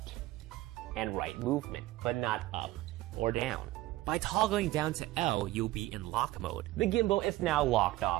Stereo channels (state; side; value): quieter; left; 17.2 dB